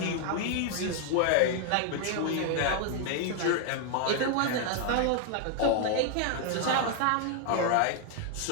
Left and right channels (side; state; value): both; different; correlation 0.00